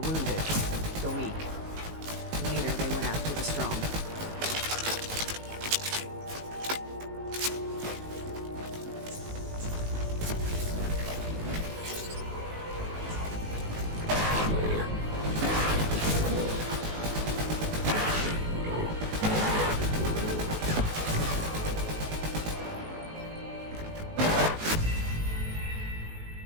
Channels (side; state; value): left; late; 19 ms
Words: the weak. Later, they went after the strong.